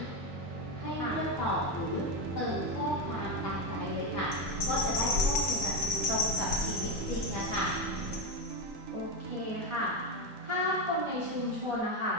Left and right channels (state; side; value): normal; both; correlation 0.11